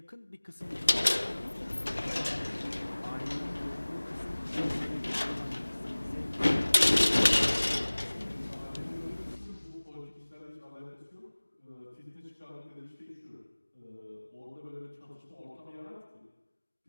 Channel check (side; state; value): both; inverted; correlation -1.00